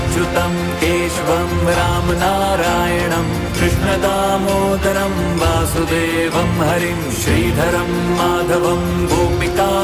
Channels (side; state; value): both; identical; correlation 1.00